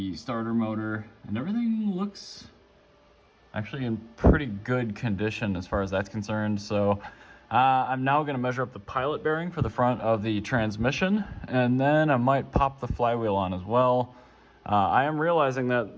starter motor, and everything looks actually in pretty good condition as far as that's concerned. So I'm now gonna measure up the pilot bearing for the front of the transmission, and then I might pop the flywheel on as well. I am realizing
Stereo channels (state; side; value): identical; both; correlation 1.00